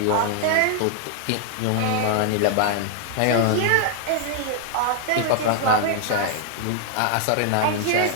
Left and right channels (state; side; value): different; both; correlation 0.00